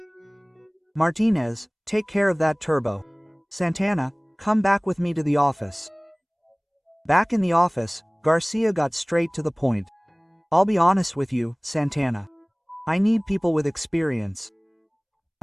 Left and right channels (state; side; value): identical; both; correlation 1.00